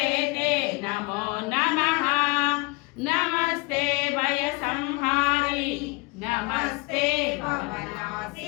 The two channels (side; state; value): right; quieter; 27.3 dB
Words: ते नमो नमः। नमस्ते भयसंहारी नमस्ते